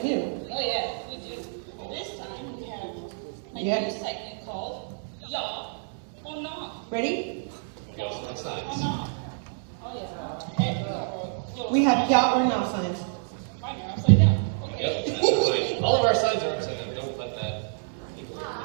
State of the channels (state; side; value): silent; left; digital silence